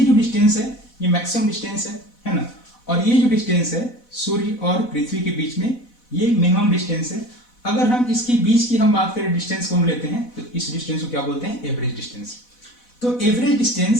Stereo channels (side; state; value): right; late; 4.1 ms